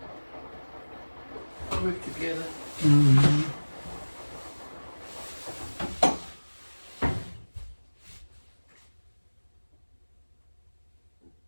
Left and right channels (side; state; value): both; inverted; correlation -1.00